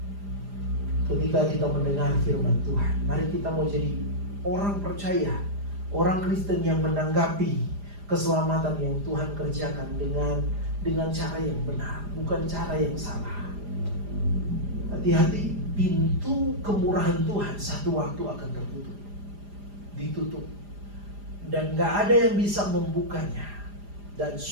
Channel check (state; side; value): late; left; 4.9 ms